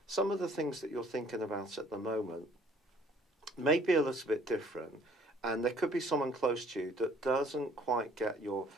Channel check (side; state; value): both; normal; correlation 0.58